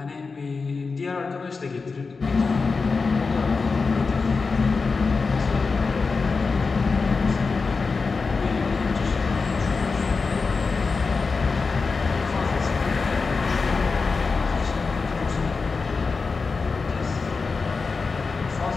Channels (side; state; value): right; quieter; 4.5 dB